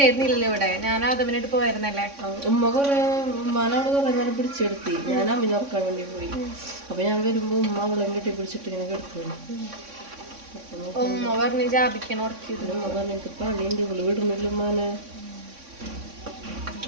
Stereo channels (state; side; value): late; left; 3.6 ms